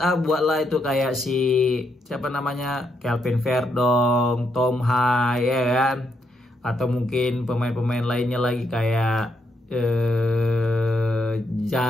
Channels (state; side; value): normal; both; correlation 0.78